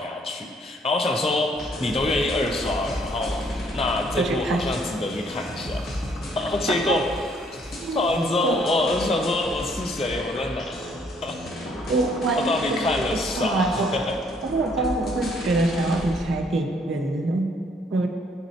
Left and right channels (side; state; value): both; normal; correlation 0.65